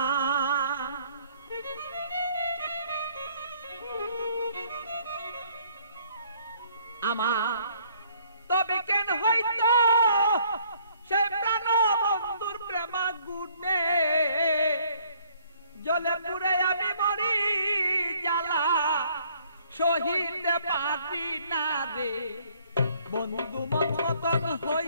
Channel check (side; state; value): both; inverted; correlation -0.63